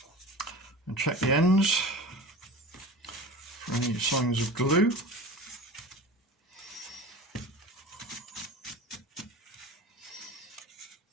And check the ends for any signs of glue.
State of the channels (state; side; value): normal; both; correlation 0.35